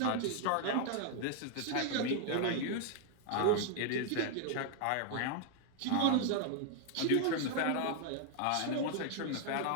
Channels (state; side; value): different; both; correlation 0.00